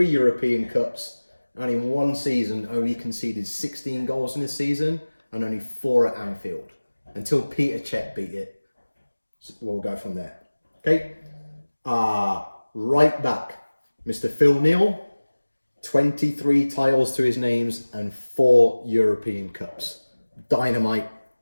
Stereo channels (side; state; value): both; inverted; correlation -1.00